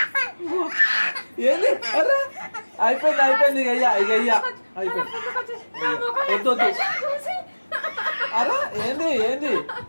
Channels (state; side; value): inverted; both; correlation -1.00